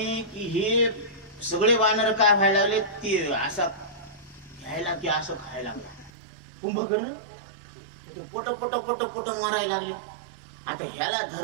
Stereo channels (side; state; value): left; drops out; at 6.1 s